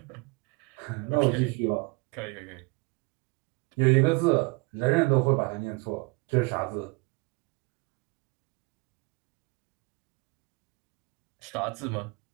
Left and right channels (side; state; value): left; quieter; 27.9 dB